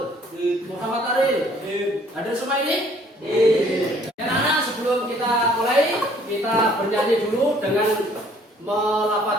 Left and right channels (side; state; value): both; normal; correlation 0.59